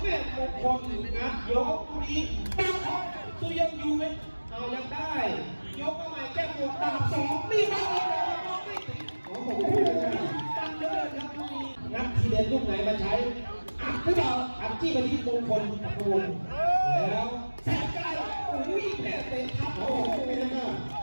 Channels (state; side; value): inverted; both; correlation -1.00